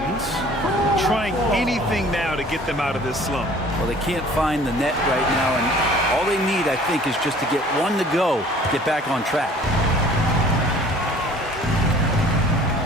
trying anything now to get them out of this slump. Well, they can't find the net right now, and all they need, I think, is just to get one to go, get back on track.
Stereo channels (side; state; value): both; normal; correlation 0.51